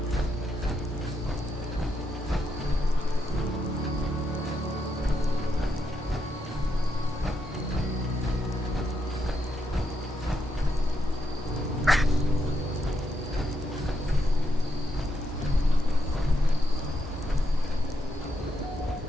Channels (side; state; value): both; normal; correlation 0.81